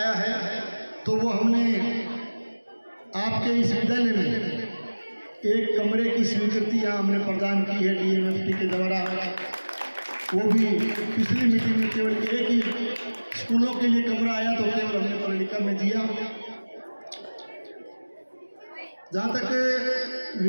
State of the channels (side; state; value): both; inverted; correlation -1.00